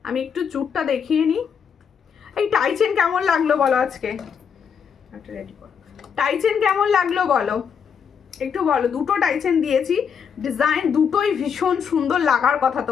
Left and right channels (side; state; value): right; quieter; 7.0 dB